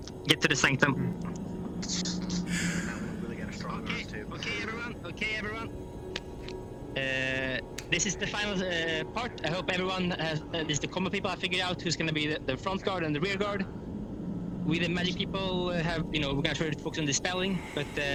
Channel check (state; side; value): identical; both; correlation 1.00